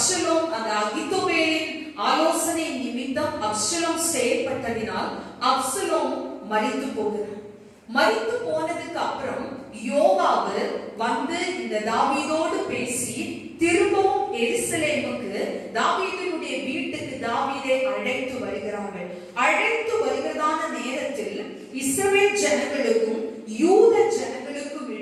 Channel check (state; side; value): identical; both; correlation 1.00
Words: அந்த அகித்தோபேலின் ஆலோசனை நிமித்தம் அப்சலோம் செயல்பட்டதினால் அப்சலோம் மரித்து போகிறார். மரித்து போனதுக்கு அப்புறம் யோவாபு வந்து இந்த தாவீதோடு பேசி திரும்பவும் எருசலேமுக்கு தாவீதினுடைய வீட்டுக்கு தாவீதை அழைத்து வருகிறார்கள். அழைத்து வருகிறதான நேரத்தில் இஸ்ரவேல் ஜனங்களுக்கும் யூத ஜனங்களுக்கும்